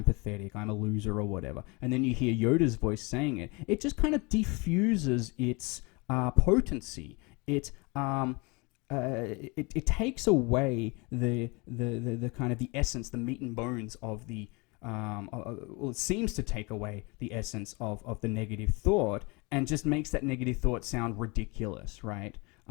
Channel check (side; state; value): right; quieter; 27.9 dB